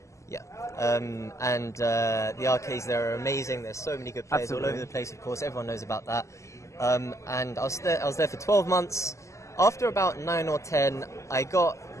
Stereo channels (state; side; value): late; right; 0.15 ms